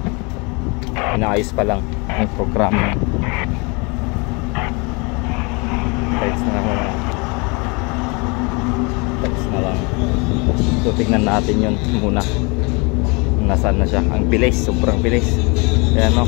inaayos pa lang yung program. Text na lang. So tignan natin yun muna. Nasaan na siya. Ang bilis, sobrang bilis. Ayan o.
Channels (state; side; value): quieter; right; 29.7 dB